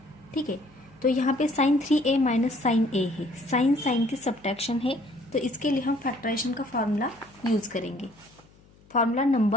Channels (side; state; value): left; noise; hum, 28 dB below the sound